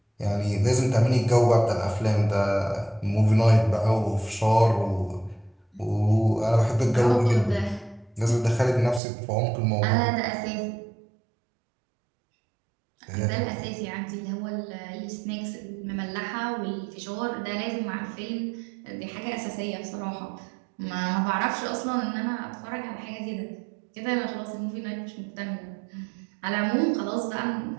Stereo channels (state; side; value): drops out; left; at 9.0 s